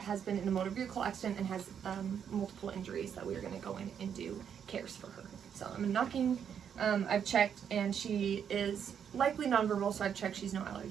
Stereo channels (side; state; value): left; quieter; 8.1 dB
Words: been in a motor vehicle accident and has multiple injuries that we're going to go in and do cares for her. So I'm knocking. I've checked, and she is likely nonverbal, so I've checked she's no